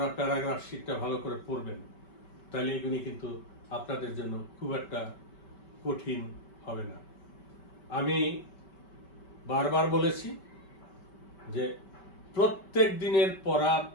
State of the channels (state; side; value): late; right; 5.2 ms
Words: প্যারাগ্রাফ শীটটা ভালো করে পড়বেন, তাহলে এগুলি কিন্তু আপনাদের জন্য খুব একটা কঠিন হবে না। আমি বারবার বলেছি যে প্রত্যেক দিনের পড়া